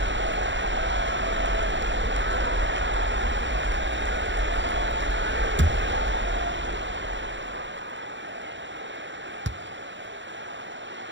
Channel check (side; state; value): left; late; 0.54 ms